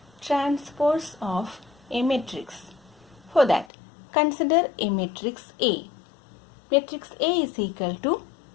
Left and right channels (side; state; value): right; drops out; at 3.7 s